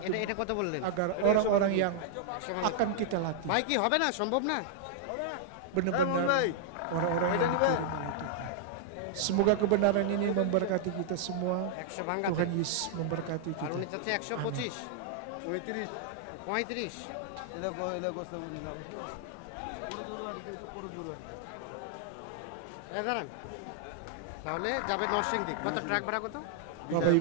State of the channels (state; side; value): different; both; correlation -0.01